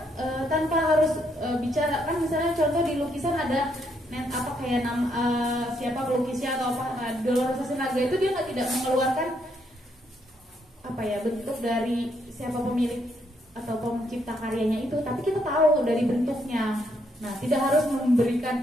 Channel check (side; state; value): both; normal; correlation 0.74